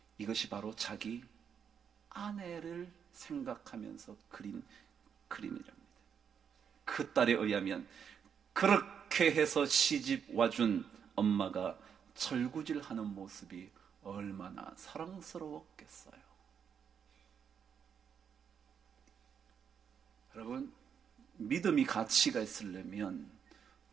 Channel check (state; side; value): quieter; left; 7.5 dB